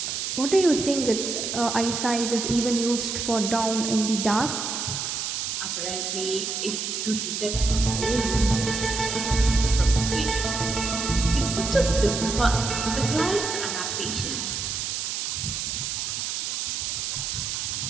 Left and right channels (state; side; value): noise; right; hiss, 2 dB below the sound